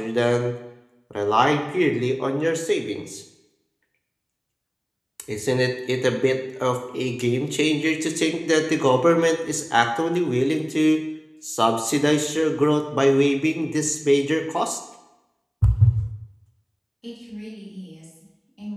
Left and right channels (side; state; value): both; identical; correlation 1.00